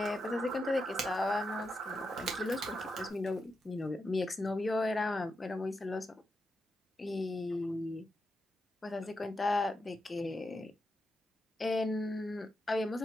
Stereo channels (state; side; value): normal; both; correlation 0.86